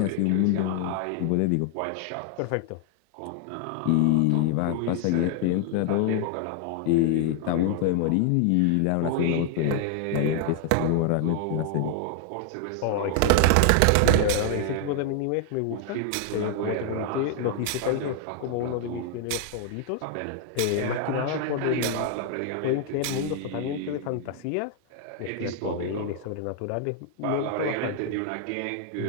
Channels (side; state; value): both; different; correlation 0.00